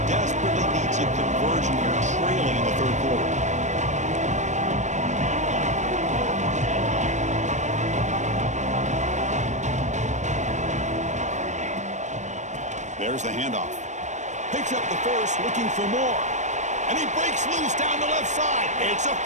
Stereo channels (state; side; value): late; left; 0.34 ms